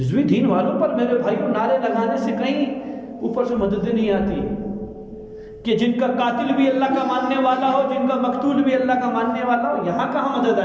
دین والوں پر میرے بھائیوں نعرے لگانے سے کہیں اوپر سے مدد نہیں آتی کہ جن کا قاتل بھی اللہ کا ماننے والا ہو، جن کا مقتول بھی اللہ کا ماننے والا ہو، یہاں کہاں مدد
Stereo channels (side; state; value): both; identical; correlation 1.00